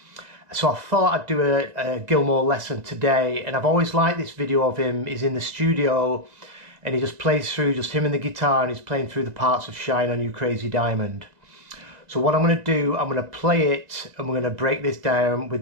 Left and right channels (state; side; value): late; left; 2.0 ms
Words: So I thought I'd do a Gilmour lesson today, and I've always liked this video of him. He's in the studio and he just plays through, just him and the guitar, and he's playing through the parts of Shine On You Crazy Diamond. So what I'm going to do, I'm going to play it and we're going to break this down